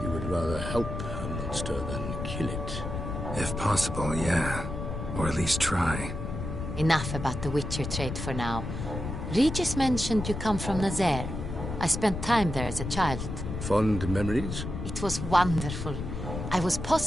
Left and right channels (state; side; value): noise; left; rumble, 6 dB below the sound